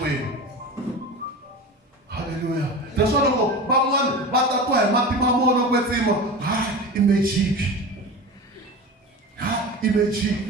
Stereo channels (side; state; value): both; normal; correlation 0.30